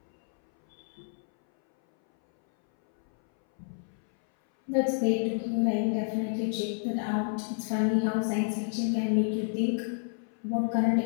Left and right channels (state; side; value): silent; right; 58 dB below the other